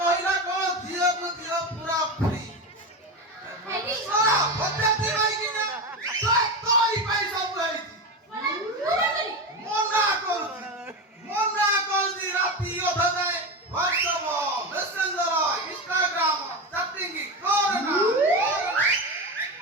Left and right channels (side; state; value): both; normal; correlation 0.19